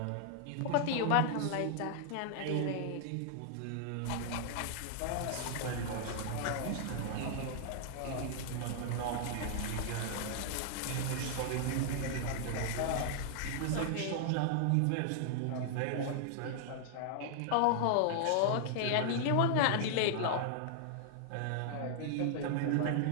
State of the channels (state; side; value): different; both; correlation -0.01